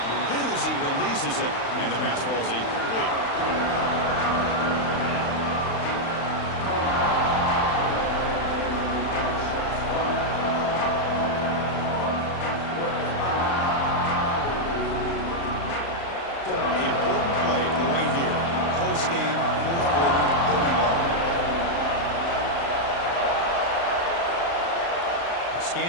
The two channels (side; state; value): right; late; 35 ms